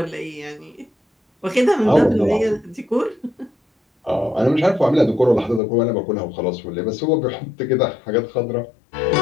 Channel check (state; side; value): drops out; right; at 5.6 s